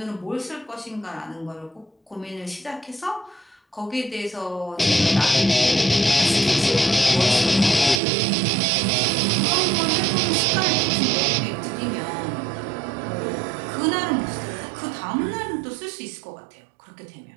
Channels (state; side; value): drops out; left; at 8.0 s